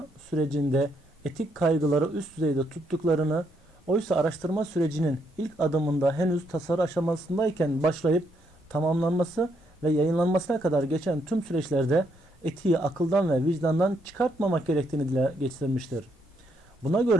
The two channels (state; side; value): normal; both; correlation 0.75